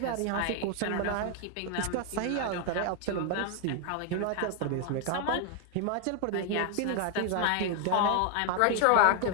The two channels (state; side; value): different; both; correlation 0.00